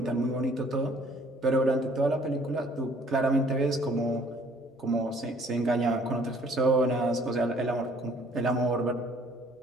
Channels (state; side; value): normal; both; correlation 0.58